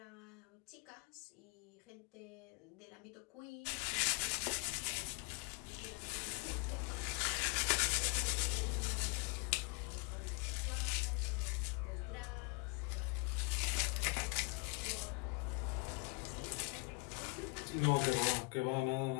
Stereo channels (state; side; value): quieter; right; 30.1 dB